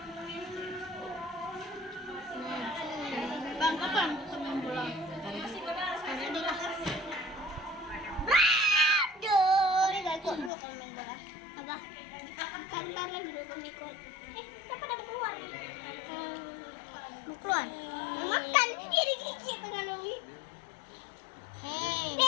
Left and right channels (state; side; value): drops out; right; at 10.5 s